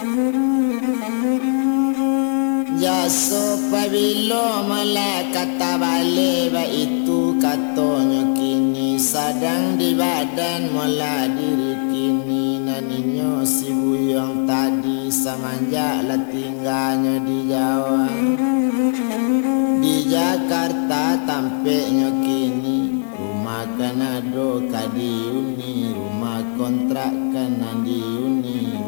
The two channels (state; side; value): silent; right; digital silence